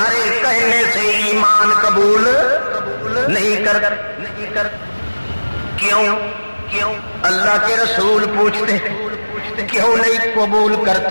کہنے سے ایمان قبول نہیں کر کیوں؟ اللہ کے رسول پوچھتے کیوں نہیں قبول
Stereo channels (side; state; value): both; inverted; correlation -1.00